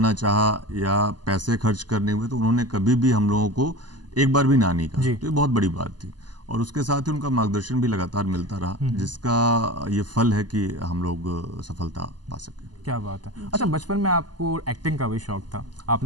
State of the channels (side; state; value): left; late; 0.70 ms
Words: चाहा या पैसे खर्च करने हुए, तो उन्होंने कभी भी हम लोगों को एक बार भी ना नहीं कहा। तो ये बहुत बड़ी बात थी। और उसके साथ ही उनका मार्गदर्शन भी लगातार मिलता रहा, जिसका ये फल है कि हम लोग सफलता पा सके। क्या बात है। अच्छा, बचपन में आपको एक्टिंग का भी शौक था,